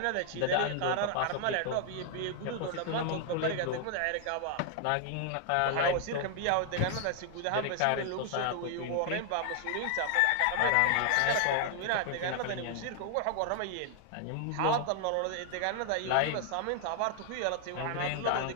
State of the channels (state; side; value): different; both; correlation 0.00